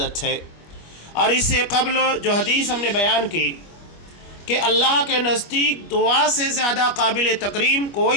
ہے، اور اس سے قبل جو حدیث ہم نے بیان کی کہ اللہ کے نزدیک دعا سے زیادہ قابل تکریم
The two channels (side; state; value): right; late; 25 ms